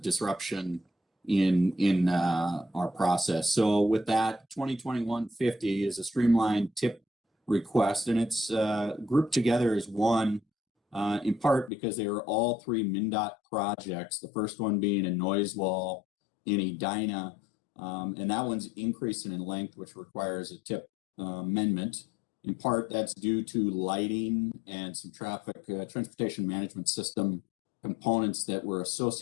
disruption in our process. So with that, 2021-50 is a streamlined tip request, and it's grouped together as one in part because they are all 3 MnDOT projects. The first one being a noise wall in Edina, and that one's increasing in length, which requires a tip amendment. In part, that's due to lighting and some traffic transportation management system components that were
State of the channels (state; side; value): drops out; right; at 11.7 s